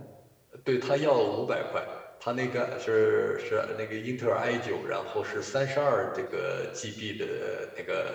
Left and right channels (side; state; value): both; identical; correlation 1.00